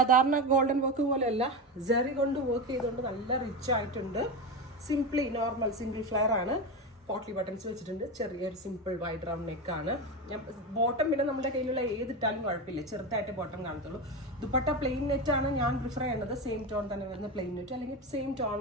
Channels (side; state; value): both; normal; correlation 0.18